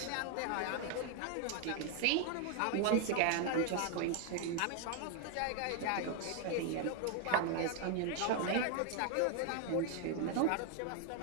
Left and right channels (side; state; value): both; different; correlation 0.00